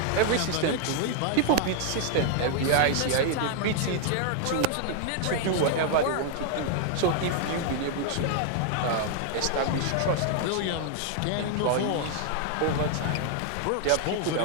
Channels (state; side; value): different; both; correlation 0.00